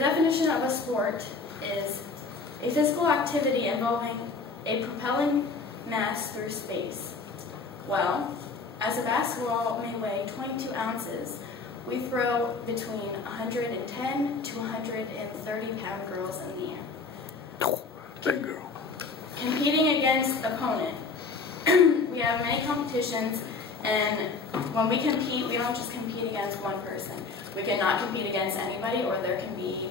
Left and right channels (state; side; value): quieter; right; 4.4 dB